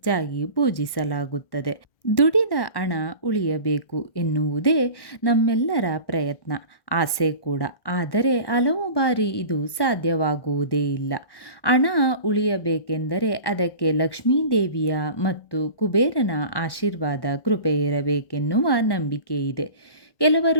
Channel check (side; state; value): right; late; 1.1 ms